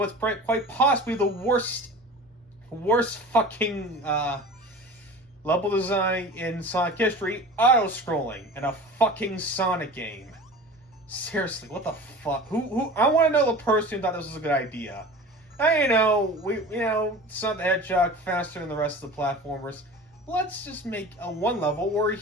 quite possibly the worst fucking level design in Sonic history, auto-scrolling in a fucking Sonic game. Seriously, what the fuck? Who? I want to know the person who thought this was a good idea. Sonic the Hedgehog faster than the rest of the platformers. Let's just make a one level where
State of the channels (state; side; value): normal; both; correlation 0.37